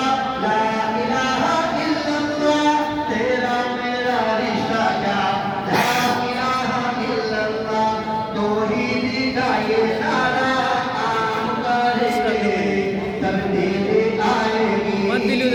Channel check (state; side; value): identical; both; correlation 1.00